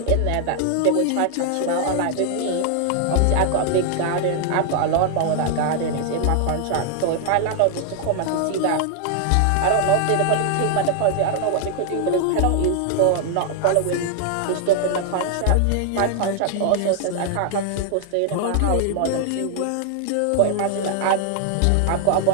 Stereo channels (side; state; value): both; different; correlation 0.00